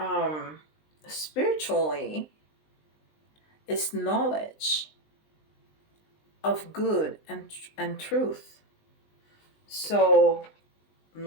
spiritually is knowledge of good and truth. So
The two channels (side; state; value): right; late; 20 ms